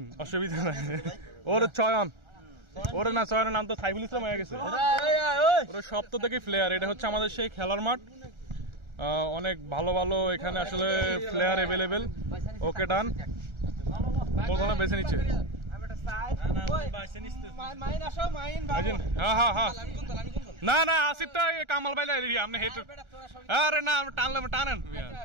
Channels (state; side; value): late; left; 1.4 ms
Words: অসুবিধা নাই, ওর চয়ন, ওর না চয়নের নাম তো সাইফুল ইসলাম হয়ে গেছে। ওর সপ্তাহ থেকে প্লেয়ার। এটা হচ্ছে আমাদের সেই খেলার মাঠ। অনেক ভালো ভালো এখানে আসলে প্লেয়ার এভেলেবেল। ওকে ডান, মোটামুটি বেছে নিচ্ছে। না না আসিফটা কামাল বাইলা আপনি হেঁটে, আরে না টানলে টানেন।